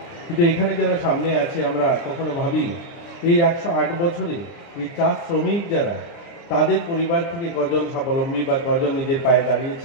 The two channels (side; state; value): right; late; 30 ms